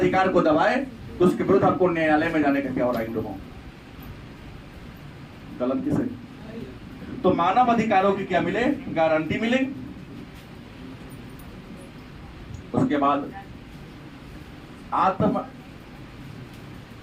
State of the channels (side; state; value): both; identical; correlation 1.00